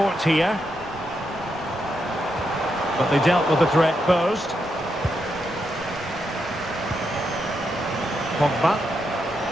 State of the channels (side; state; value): both; normal; correlation 0.82